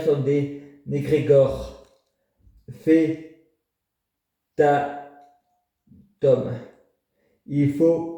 sont des négrégores. Fais ta tome. Il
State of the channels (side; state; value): both; identical; correlation 1.00